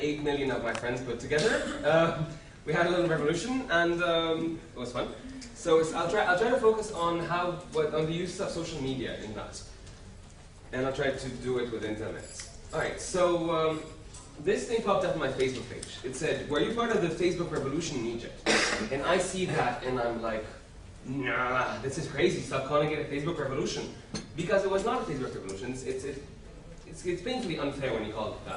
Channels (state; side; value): identical; both; correlation 1.00